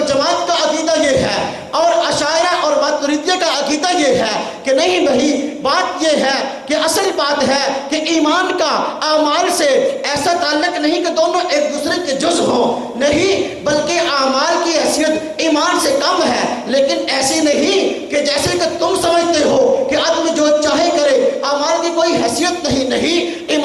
کا عقیدہ یہ ہے، اور اشاعرہ اور ماتریدیہ کا عقیدہ یہ ہے کہ نہیں بھائی، بات یہ ہے کہ اصل بات ہے کہ ایمان کا اعمال سے ایسا تعلق نہیں کہ دونوں ایک دوسرے کے جز ہوں، نہیں، بلکہ اعمال کی حیثیت ایمان سے کم ہے، لیکن ایسی نہیں کہ جیسے کہ تم سمجھتے ہو کہ آدمی جو چاہے کرے، اعمال کی کوئی حیثیت نہیں،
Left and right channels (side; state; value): both; identical; correlation 1.00